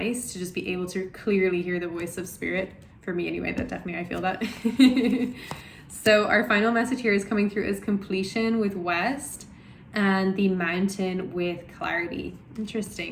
to just be able to clearly hear the voice of spirit. For me anyway, that definitely I feel that. So our final message here is coming through as completion with West and the mountain with clarity.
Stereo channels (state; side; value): identical; both; correlation 1.00